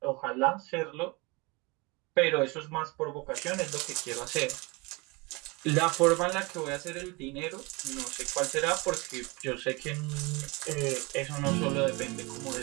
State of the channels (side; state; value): left; quieter; 26.3 dB